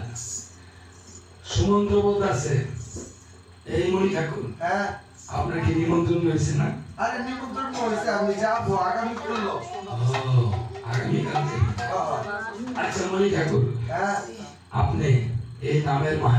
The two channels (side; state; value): both; identical; correlation 1.00